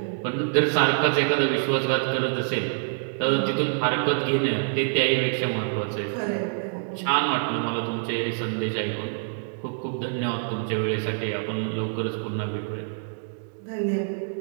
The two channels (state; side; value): silent; left; digital silence